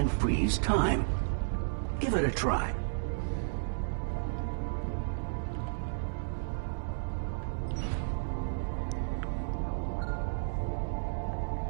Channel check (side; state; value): left; silent; 56 dB below the other